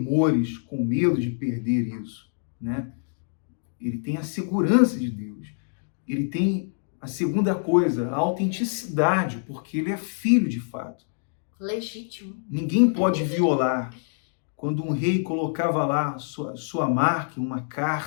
com medo de perder isso, né? Ele tem a segurança de Deus. Ele tem a segunda coisa, a autenticidade, porque ele é filho de fato. Legítimo. Ninguém pode violar. Quando um rei colocava lá sua marca, uma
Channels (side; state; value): right; silent; digital silence